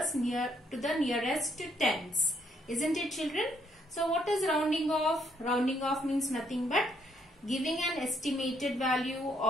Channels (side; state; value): both; normal; correlation 0.71